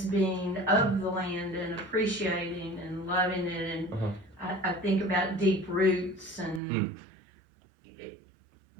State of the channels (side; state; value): left; drops out; at 6.6 s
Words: of the land and appreciating and loving it. And I think about deep roots and